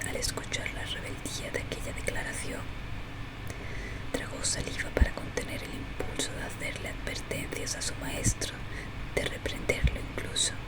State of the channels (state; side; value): identical; both; correlation 1.00